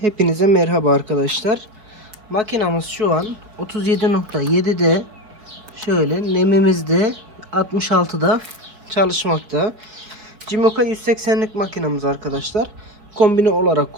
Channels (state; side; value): late; left; 4.4 ms